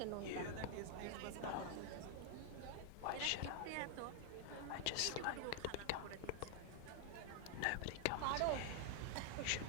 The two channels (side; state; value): both; different; correlation 0.00